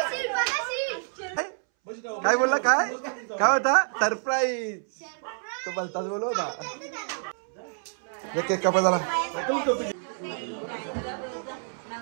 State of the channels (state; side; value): silent; left; 60 dB below the other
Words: काय बोलला? काय होता? सरप्राईज. तो बोलताच बोलव होता. केक कापा झाला.